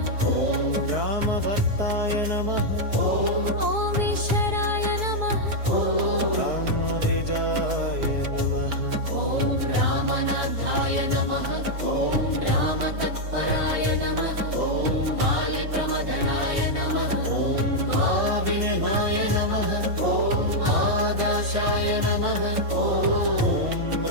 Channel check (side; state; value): left; late; 4.7 ms